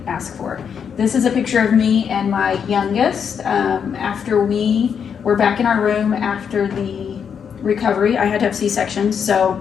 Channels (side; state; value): right; quieter; 7.2 dB